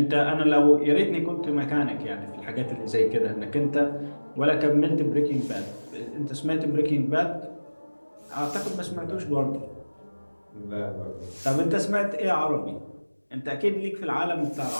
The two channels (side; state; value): both; inverted; correlation -1.00